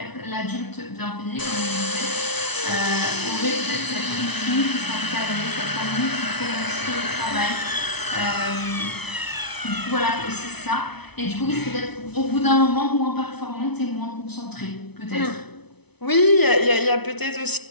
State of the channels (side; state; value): right; late; 0.99 ms